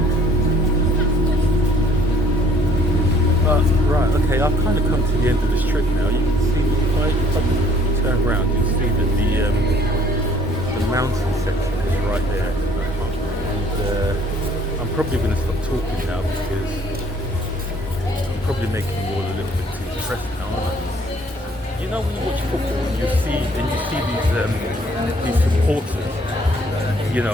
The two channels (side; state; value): both; normal; correlation 0.59